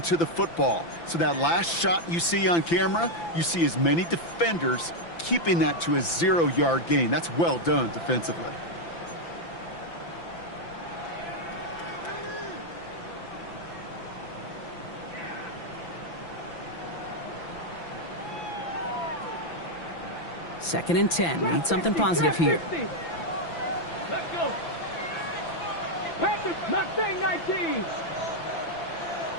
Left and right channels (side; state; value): right; late; 5.9 ms